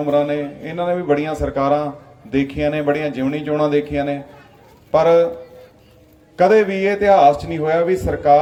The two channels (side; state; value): both; identical; correlation 1.00